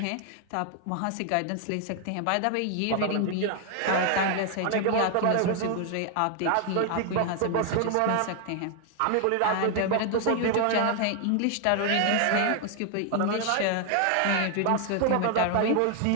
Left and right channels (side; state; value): both; different; correlation 0.00